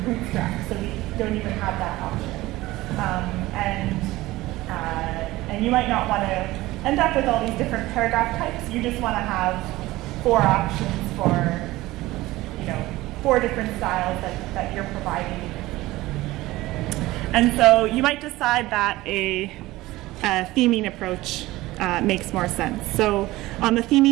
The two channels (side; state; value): left; quieter; 18.2 dB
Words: Bootstrap, so we don't even have that option. And you might not want to end up with all these different paragraph types. You just want to have 4 options for, 4 different styles that you're providing. And so you might decide that a theming approach makes more sense. So on the